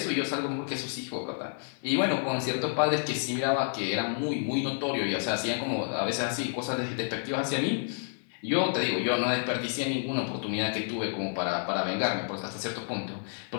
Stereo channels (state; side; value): silent; right; digital silence